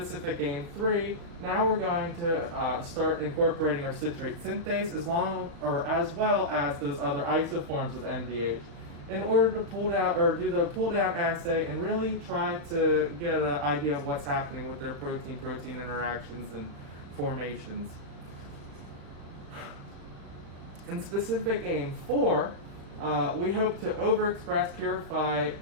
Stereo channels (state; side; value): late; left; 36 ms